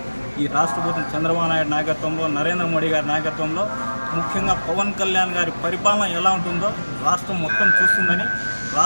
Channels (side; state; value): both; inverted; correlation -1.00